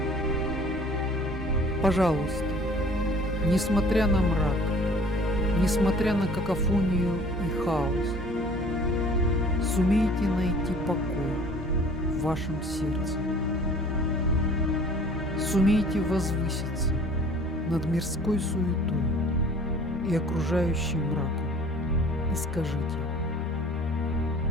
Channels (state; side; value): normal; both; correlation 0.50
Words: Пожалуйста, несмотря на мрак, несмотря на какофонию и хаос, сумейте найти покой в вашем сердце. Сумейте возвыситься над мирской суетой и окружающим мраком и скажите: